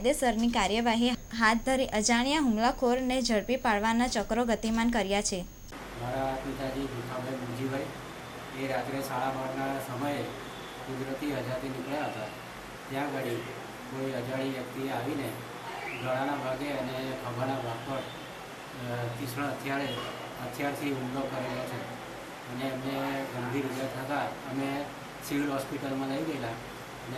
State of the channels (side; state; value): both; identical; correlation 1.00